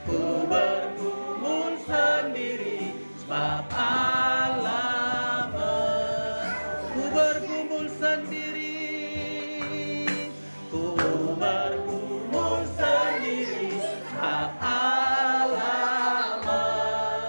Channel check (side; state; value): both; inverted; correlation -1.00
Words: Ku bergumul sendiri sebab Allah ku bergumul sendiri, ku bergumul sendiri sebab Allah